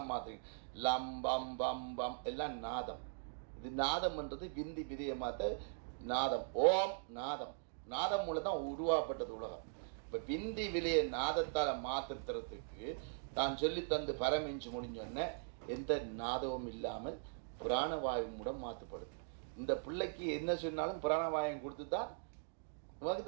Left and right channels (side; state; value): left; silent; digital silence